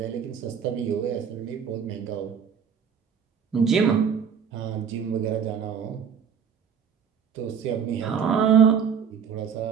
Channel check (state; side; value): quieter; left; 7.2 dB